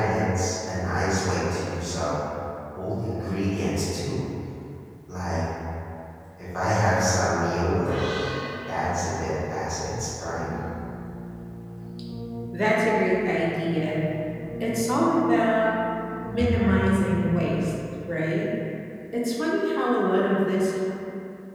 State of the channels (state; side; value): identical; both; correlation 1.00